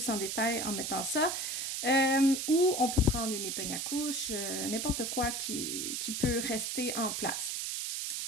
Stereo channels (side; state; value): right; noise; hiss, 2 dB below the sound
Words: en détail en mettant ça. Ou on peut prendre une épingle à couche, n'importe quoi qui peut rester en place.